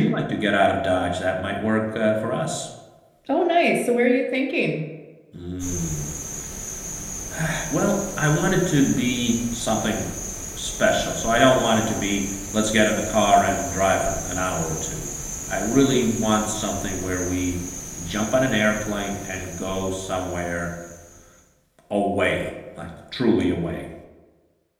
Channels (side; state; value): both; identical; correlation 1.00